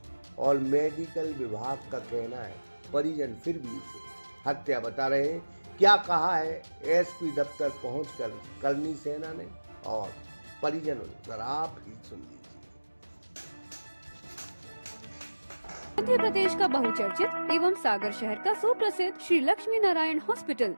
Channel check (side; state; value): both; inverted; correlation -1.00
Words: और मेडिकल विभाग का कहना है। परिजन फिर भी इसे हत्या बता रहे हैं। क्या कहा है एसपी दफ्तर पहुंचकर करनी सेना ने और परिजनों ने, जरा आप ही सुन लीजिए। मध्य प्रदेश का बहुचर्चित एवं सागर शहर का सुप्रसिद्ध श्री लक्ष्मी नारायण हॉस्पिटल,